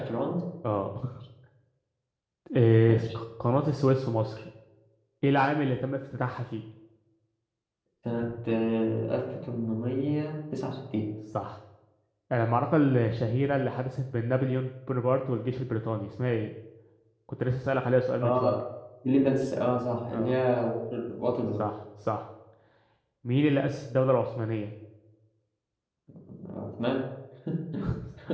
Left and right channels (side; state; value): both; identical; correlation 1.00